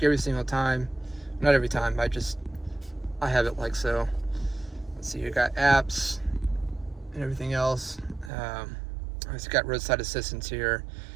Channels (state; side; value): drops out; left; at 8.3 s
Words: you every single time. Not every time. I have it like so. Let's see. You got apps and everything else. It's got roadside assistance here.